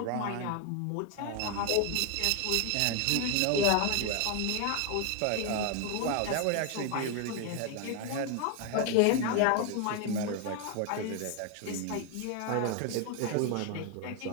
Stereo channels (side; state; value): both; different; correlation 0.01